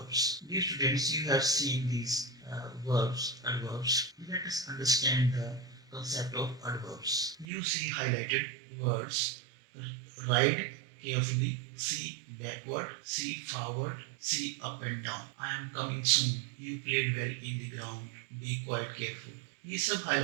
Dear students, you have seen these adverbs. Let us understand the concept of adverbs. You see highlighted words: ride carefully, see backward, see forward, see up and down. I am coming soon. You played well in the ground. Be quite careful. ये सब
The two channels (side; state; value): left; drops out; at 7.5 s